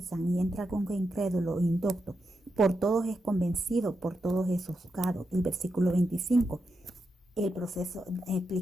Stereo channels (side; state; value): both; normal; correlation 0.86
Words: y entra algún incrédulo o indocto, por todos es convencido, por todos es juzgado. El versículo 25. El proceso,